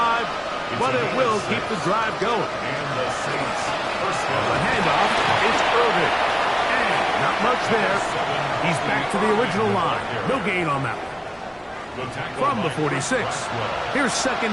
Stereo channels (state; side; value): identical; both; correlation 1.00